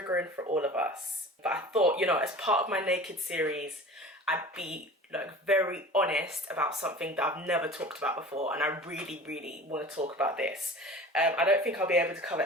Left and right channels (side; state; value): both; normal; correlation 0.39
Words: for all of us. But I thought, you know, as part of my naked series, I'd be like very honest about something that I've never talked about before, and I really want to talk about this. I don't think I'll be able to